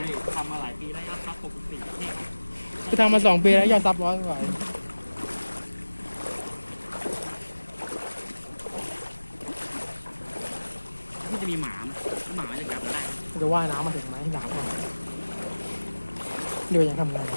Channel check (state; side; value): inverted; both; correlation -1.00